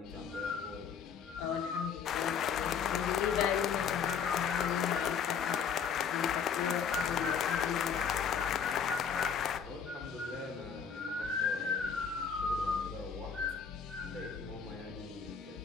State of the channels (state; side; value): quieter; right; 6.8 dB